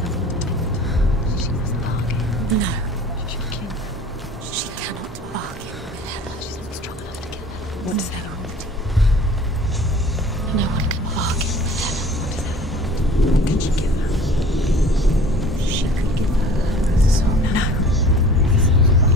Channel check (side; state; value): both; normal; correlation 0.46